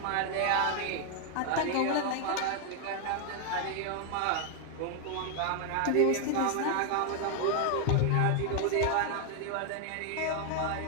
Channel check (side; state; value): both; different; correlation 0.00